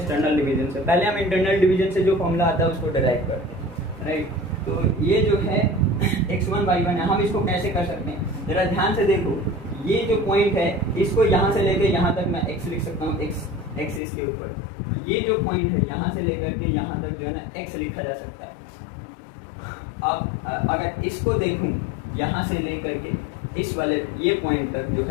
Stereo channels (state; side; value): drops out; right; at 14.0 s